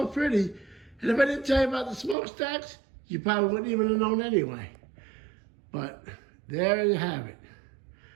pretty. And if I didn't tell you about the smokestacks, you probably wouldn't even have known anyway. But there you have it.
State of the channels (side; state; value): left; drops out; at 2.1 s